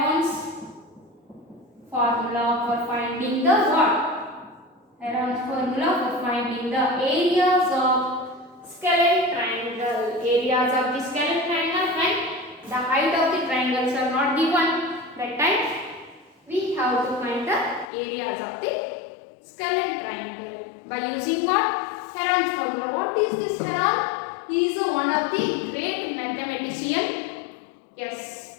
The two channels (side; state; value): right; drops out; at 17.9 s